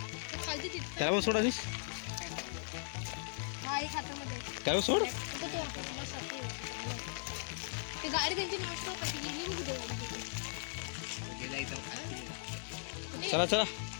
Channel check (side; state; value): right; silent; digital silence